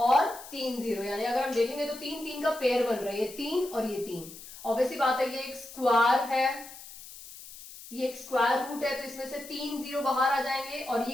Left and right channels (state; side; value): noise; left; hiss, 15 dB below the sound